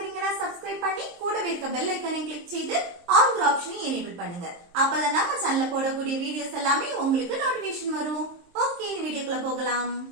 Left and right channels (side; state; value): left; late; 23 ms